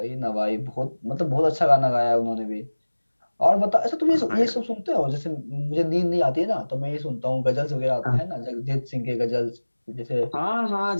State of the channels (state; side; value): inverted; both; correlation -1.00